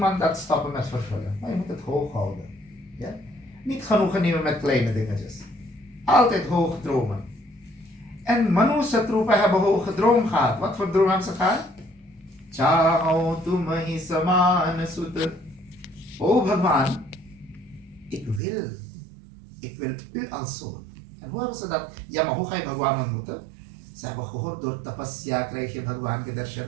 dat stoppen met vervullen. Maar je moet het hoog houden. Ja? Niet genoegen nemen met kleine dingetjes. Altijd hoge dromen. En Manu Shatrupa hebben hoge droom gehad. Wat voor droom hebben ze gehad? Chaho tumahi saman sut. Oh Bhagwan, ik wil u als zoon. En hoe hebben ze dat? Ja, maar hoe ga je Bhagwan ontmoeten? Ze hebben gehoord, door tapasya krijg je Bhagwan gedarshan.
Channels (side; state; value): left; drops out; at 18.4 s